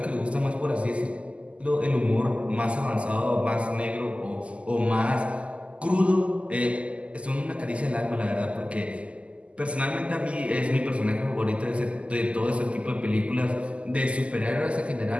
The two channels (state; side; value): late; left; 0.059 ms